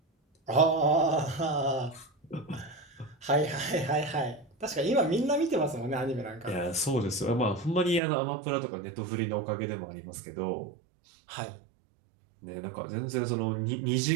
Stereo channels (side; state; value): left; drops out; at 8.0 s